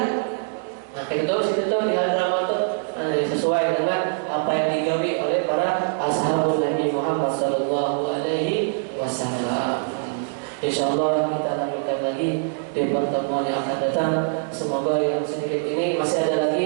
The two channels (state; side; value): silent; left; digital silence